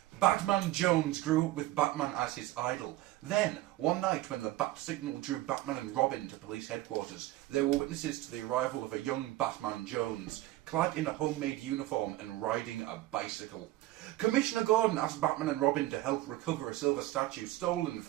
Batman Jones grew up with Batman as his idol. Then, one night when the bat signal drew Batman and Robin to police headquarters, they were witnesses to the arrival of a young Batman Jones, clad in a homemade uniform and riding a bicycle. Commissioner Gordon asked Batman and Robin to help recover a silver statue stolen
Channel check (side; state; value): left; quieter; 16.7 dB